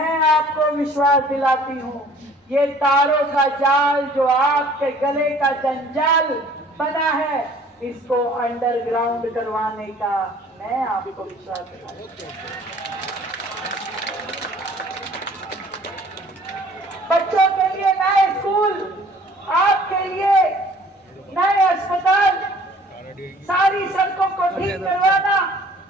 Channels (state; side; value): normal; both; correlation 0.53